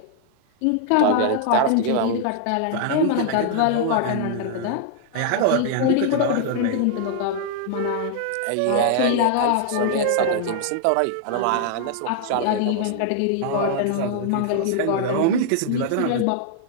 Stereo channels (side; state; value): both; different; correlation -0.01